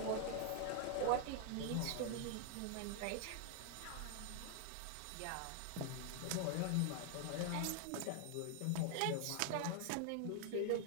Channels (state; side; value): different; both; correlation 0.00